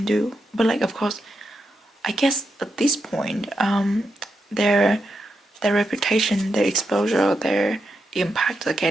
do. But like, of course, I guess at this point, their reputation, their exposure, their impact are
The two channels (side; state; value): both; normal; correlation 0.85